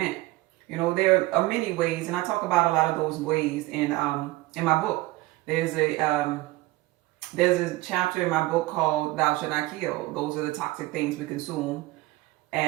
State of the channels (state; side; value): quieter; left; 19.2 dB